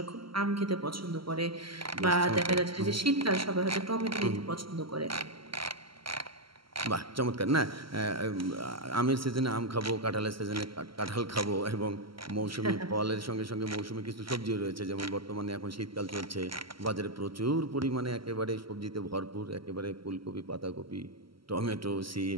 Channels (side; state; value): left; late; 0.74 ms